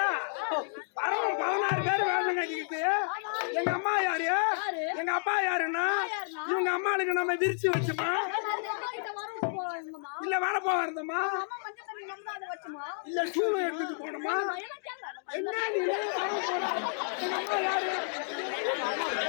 16 பேர் வேணுங்க. எங்க அம்மா யாரு? எங்க அப்பா யாருன்னா இவங்க அம்மாளுக்கு நம்ம விரிச்சு வச்சுமா இல்ல வேலை போக இருந்தோமா இல்ல சூழல் எடுத்துட்டு போனோமா? என்ன நீ எங்க அம்மா யாரு?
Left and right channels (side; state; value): right; silent; digital silence